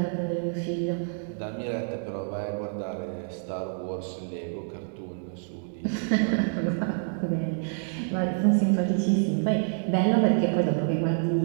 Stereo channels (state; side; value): silent; left; digital silence